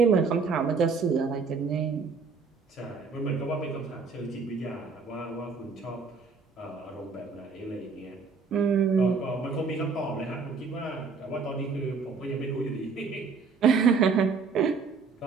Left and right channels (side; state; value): left; quieter; 4.9 dB